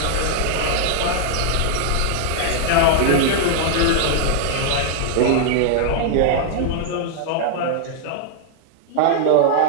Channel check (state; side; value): different; both; correlation -0.01